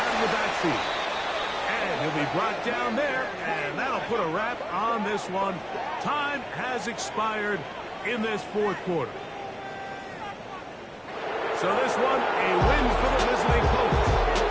of the backfield. And he'll be brought down there, and that'll put a wrap on this one. Time has expired in this 4th quarter. So this one, a win for the visiting Colts.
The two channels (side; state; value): both; identical; correlation 1.00